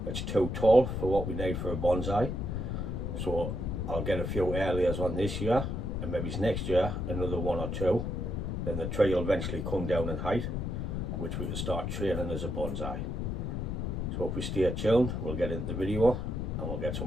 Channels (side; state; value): left; noise; rumble, 2 dB below the sound